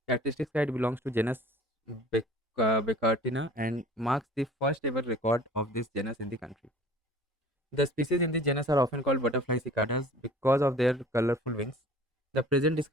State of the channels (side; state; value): both; normal; correlation 0.47